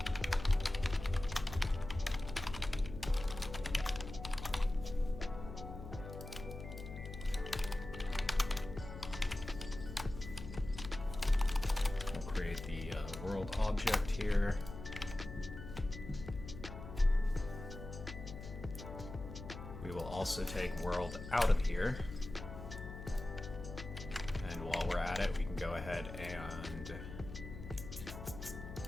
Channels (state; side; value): noise; left; hum, 10 dB below the sound